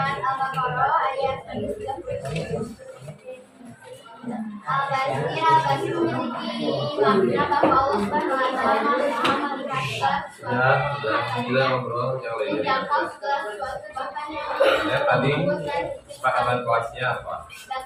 Al-Baqarah ayat 30. Al-Basir memiliki makna bahwa Allah Subhanahu wa Ta'ala Maha melihat segala sesuatu Sudah ngobrol yang lainnya. menjangkau segala sesuatu bahkan yang Ya, tadi kesepakatan kelasnya apa?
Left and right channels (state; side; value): identical; both; correlation 1.00